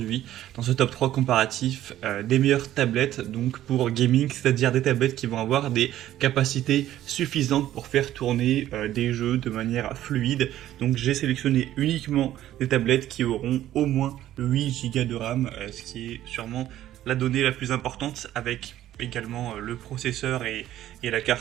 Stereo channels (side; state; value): left; quieter; 13.0 dB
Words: dans ce top 3 comparatif des meilleures tablettes donc pour gaming, c'est-à-dire des tablettes qui vont avoir des capacités suffisantes pour faire tourner des jeux de manière fluide. Donc j'ai sélectionné uniquement des tablettes qui auront au moins 8 Go de RAM, ce qui est sûrement la donnée la plus importante, avec également le processeur et la